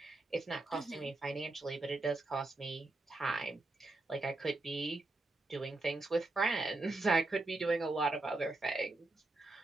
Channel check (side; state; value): left; quieter; 3.0 dB